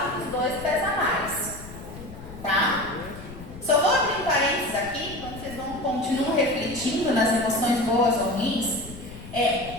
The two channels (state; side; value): noise; left; rumble, 14 dB below the sound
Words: dos dois pesa mais? Tá? Só vou abrir um parênteses aqui, quando vocês continuam refletindo nas emoções boas ou ruins.